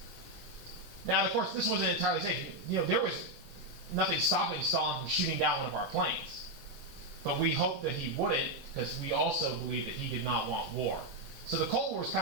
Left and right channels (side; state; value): left; late; 24 ms